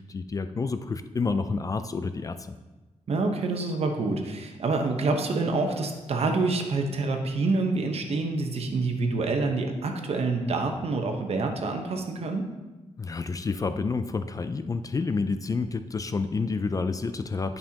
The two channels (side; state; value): both; normal; correlation 0.70